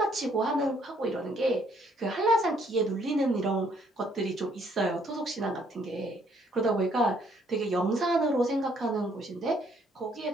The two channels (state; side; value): normal; both; correlation 0.66